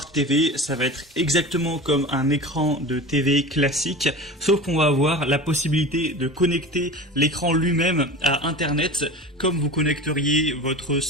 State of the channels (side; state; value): both; normal; correlation 0.32